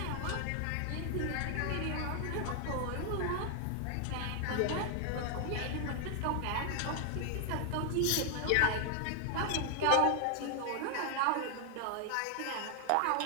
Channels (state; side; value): different; both; correlation 0.00